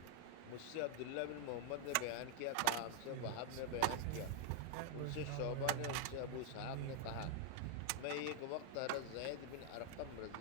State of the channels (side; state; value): both; different; correlation 0.00